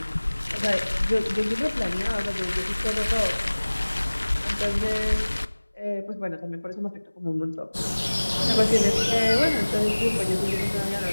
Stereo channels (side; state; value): both; inverted; correlation -1.00